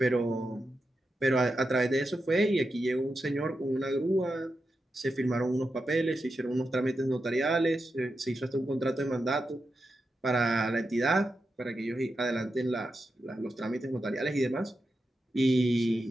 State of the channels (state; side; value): normal; both; correlation 0.88